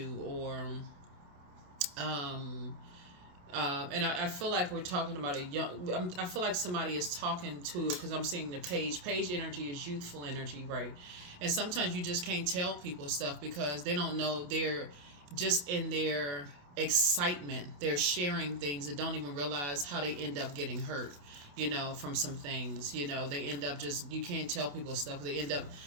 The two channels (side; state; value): left; late; 28 ms